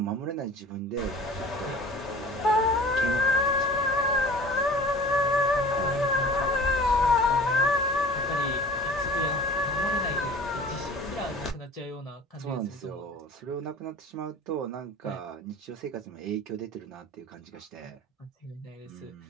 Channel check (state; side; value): normal; both; correlation 0.43